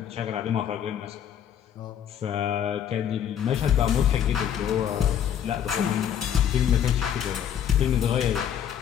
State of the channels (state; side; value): quieter; right; 9.3 dB